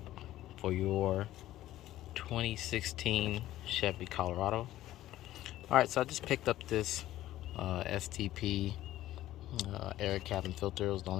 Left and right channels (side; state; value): right; quieter; 14.4 dB